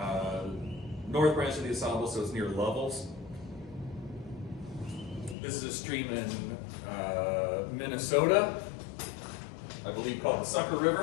north branch of the Asable, so it's near Lovell's. This is a stream in Minnesota, I believe called the Sucker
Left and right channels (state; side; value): drops out; right; at 5.4 s